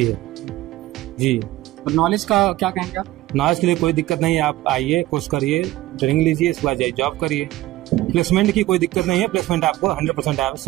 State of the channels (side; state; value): left; quieter; 16.5 dB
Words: है जी। और नॉलेज का क्या कहेंगे आप? नॉलेज के लिए कोई दिक्कत नहीं है, आप आइए, कोर्स करिए, ट्रेनिंग लीजिए, इसके बाद जाइए जॉब करिए। प्लेसमेंट की कोई दिक्कत नहीं है, प्लेसमेंट आपको 100%